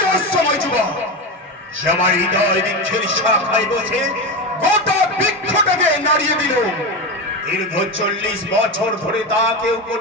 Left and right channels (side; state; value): both; normal; correlation 0.18